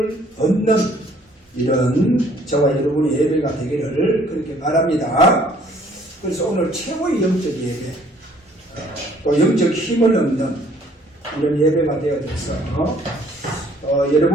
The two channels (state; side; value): normal; both; correlation 0.60